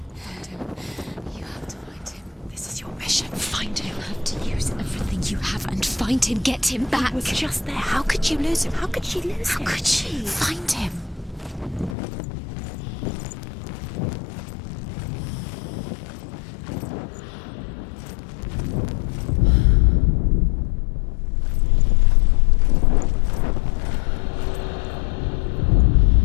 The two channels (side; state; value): right; drops out; at 12.0 s